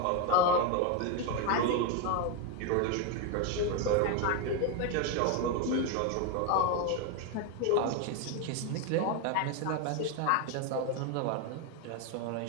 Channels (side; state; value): both; different; correlation 0.02